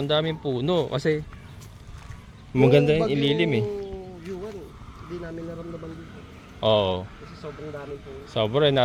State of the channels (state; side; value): identical; both; correlation 1.00